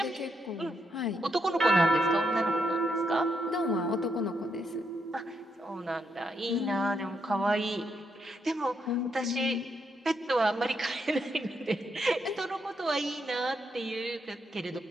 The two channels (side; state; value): both; normal; correlation 0.79